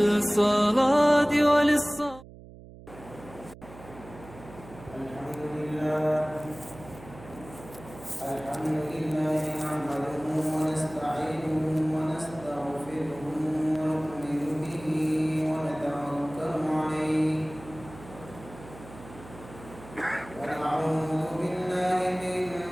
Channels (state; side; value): noise; right; hum, 18 dB below the sound